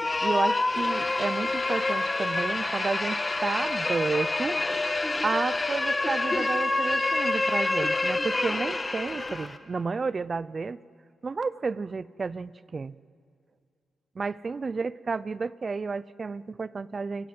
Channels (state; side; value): normal; both; correlation 0.93